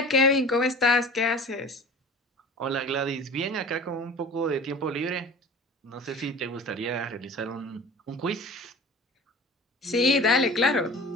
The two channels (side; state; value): both; normal; correlation 0.40